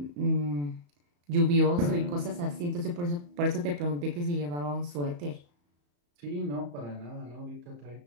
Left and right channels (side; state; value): left; late; 34 ms